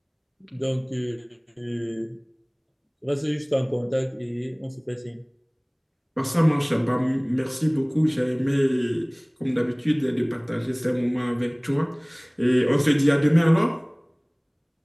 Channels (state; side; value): identical; both; correlation 1.00